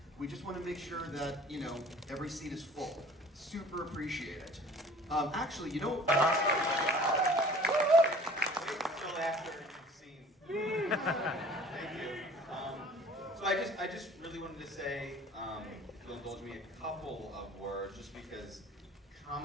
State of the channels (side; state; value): both; normal; correlation 0.48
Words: We just want to make sure that, you know, every seat is full. Super appreciate it. Actually, you know, until after you've seen. Thank you. So I just really wanted to say, if you'll indulge me, a couple of words, just because